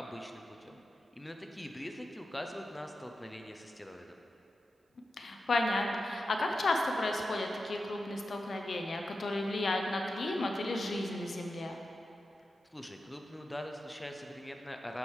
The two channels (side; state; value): both; normal; correlation 0.91